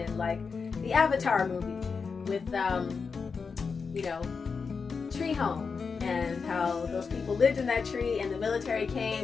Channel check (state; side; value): quieter; right; 5.2 dB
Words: like the Avatar movie with Tree Home, and how those people lived in that tree, and the military